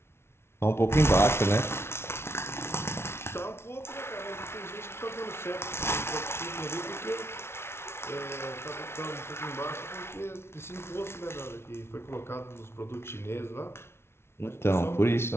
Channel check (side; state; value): right; late; 0.12 ms